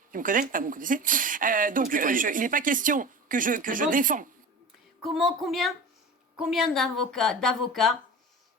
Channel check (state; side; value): normal; both; correlation 0.33